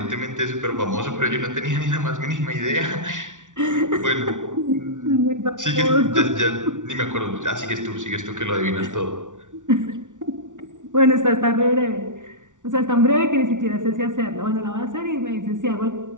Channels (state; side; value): late; left; 0.87 ms